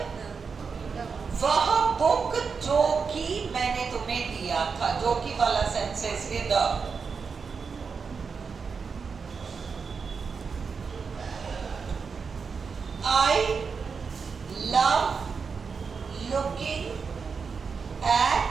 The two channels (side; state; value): left; quieter; 5.4 dB